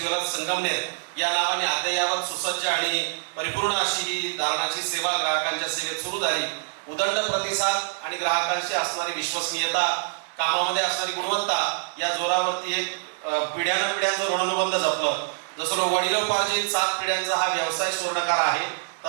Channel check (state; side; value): silent; left; digital silence